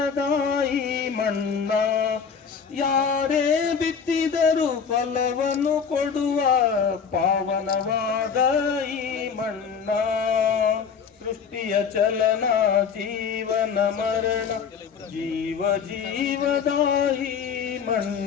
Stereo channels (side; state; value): right; quieter; 6.5 dB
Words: ಮಣ್ಣ ಯಾರೇ ಬಿತ್ತಿದರೂ ಫಲವನ್ನು ಕೊಡುವ ಪಾವನವಾದ ಈ ಮಣ್ಣ ಸೃಷ್ಟಿಯ ಚಲನ ಜೀವನ ಮರಣ ಜೀವ ಜೀವದಾಯಿ